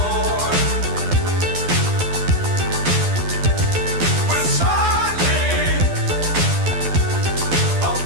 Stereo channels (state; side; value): late; left; 12 ms